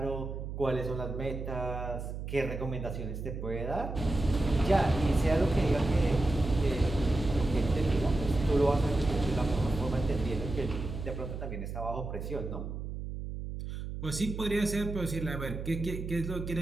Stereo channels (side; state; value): right; noise; hum, 6 dB below the sound